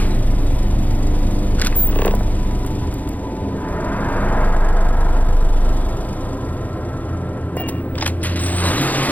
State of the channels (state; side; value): late; right; 0.079 ms